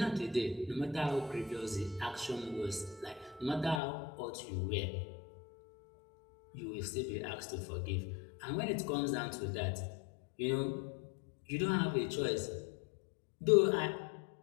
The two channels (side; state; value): right; drops out; at 3.8 s